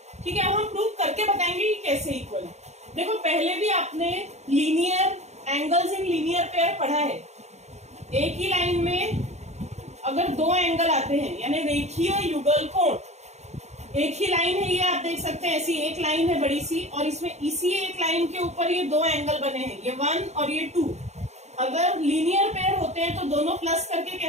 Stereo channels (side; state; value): left; late; 0.32 ms